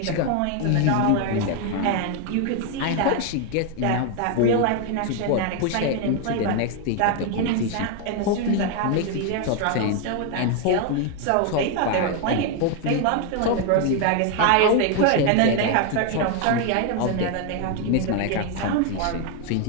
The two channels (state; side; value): different; both; correlation 0.01